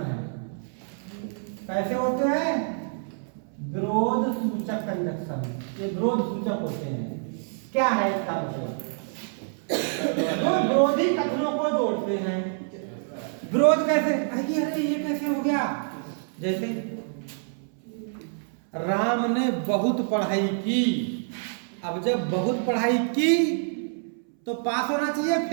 है। कैसे होते हैं? विरोध सूचक कंजक्शन, ये विरोध सूचक होते हैं। क्या है इसका मतलब? तो विरोधी कथनों को जोड़ते हैं। विरोध कैसे? अरे ये कैसे हो गया? जैसे राम ने बहुत पढ़ाई की, अब जब बहुत पढ़ाई की तो पास होना चाहिए,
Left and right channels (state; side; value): silent; left; 60 dB below the other